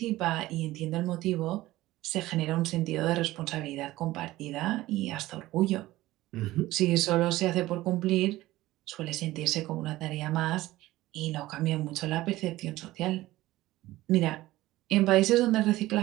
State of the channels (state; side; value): quieter; left; 17.0 dB